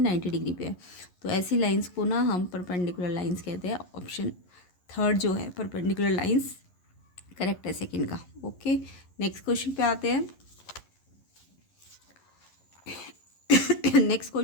90 डिग्री पे है। तो ऐसी लाइन्स को ना हम परपेंडिकुलर लाइन्स कहते हैं। ऑप्शन थर्ड जो है परपेंडिकुलर लाइन्स करेक्ट है सेकेंड का। ओके, नेक्स्ट क्वेश्चन पे आते हैं। नेक्स्ट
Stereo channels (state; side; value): late; right; 11 ms